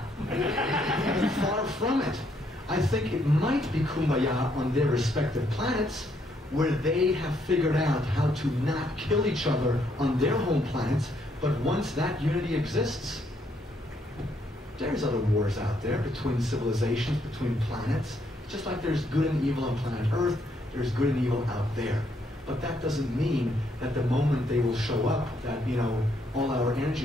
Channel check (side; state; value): both; normal; correlation 0.73